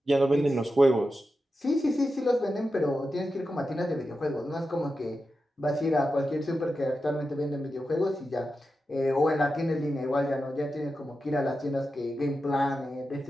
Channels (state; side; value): normal; both; correlation 0.90